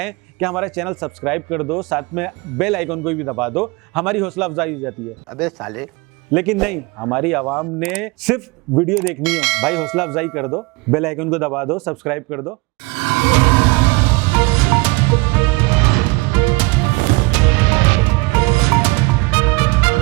कि हमारा चैनल सब्सक्राइब कर दो, साथ में बेल आइकन को भी दबा दो, हमारी हौसला अफजाई हो जाती है। अबे साले, लेकिन नहीं, हमारी आवाम ने सिर्फ वीडियो देखनी है। भाई हौसला अफजाई कर दो, बेल आइकन को दबा दो, सब्सक्राइब कर दो।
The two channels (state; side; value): quieter; left; 24.9 dB